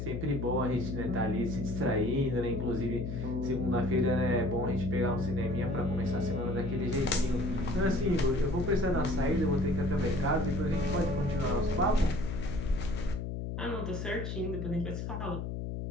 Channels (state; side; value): noise; left; hum, 4 dB below the sound